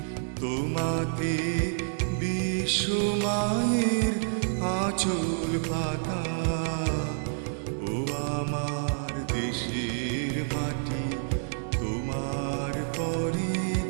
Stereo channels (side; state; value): left; silent; digital silence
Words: তোমাতে বিশ্বমায়ের আঁচল পাতা। ও আমার দেশের মাটি, তোমার পরে